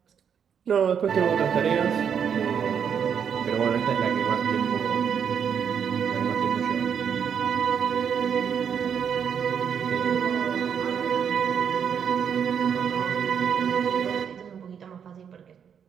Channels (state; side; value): quieter; left; 7.7 dB